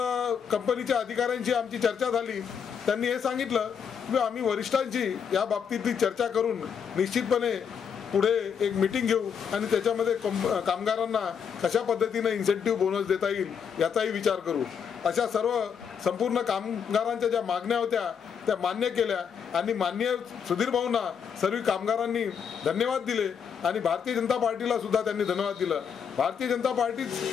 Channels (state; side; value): quieter; right; 7.2 dB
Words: कंपनीच्या अधिकाऱ्यांशी आमची चर्चा झाली। त्यांनी हे सांगितलं की आम्ही वरिष्ठांची या बाबतीतली चर्चा करून निश्चितपणे पुढे एक मीटिंग घेऊ आणि त्याच्यामध्ये कामगारांना कशा पद्धतीनं इन्सेंटिव्ह बोनस देता येईल याचाही विचार करू। अशा संपूर्ण कामगारांच्या ज्या मागण्या होत्या त्या मान्य केल्या आणि माननीय सुधीर भाऊंना सर्व कामगारांनी धन्यवाद दिले आणि भारतीय जनता पार्टीला सुद्धा त्यांनी धन्यवाद दिलं। भारतीय जनता